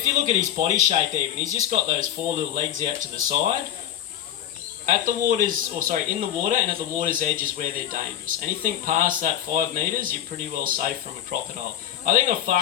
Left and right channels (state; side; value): quieter; right; 11.2 dB